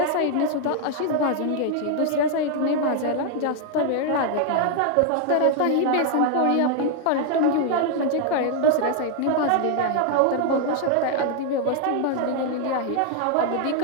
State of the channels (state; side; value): different; both; correlation 0.00